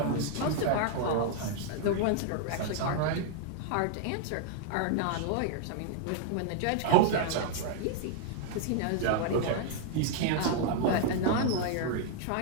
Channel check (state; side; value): different; both; correlation 0.00